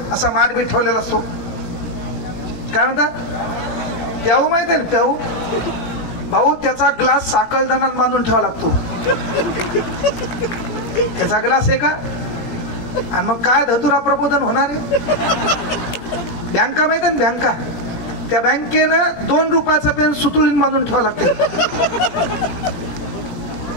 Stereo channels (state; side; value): late; right; 18 ms